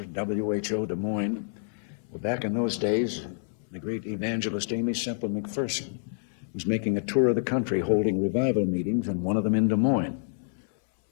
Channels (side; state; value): right; silent; 59 dB below the other